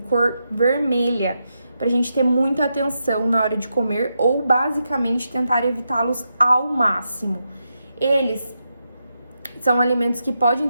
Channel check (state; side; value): inverted; both; correlation -0.85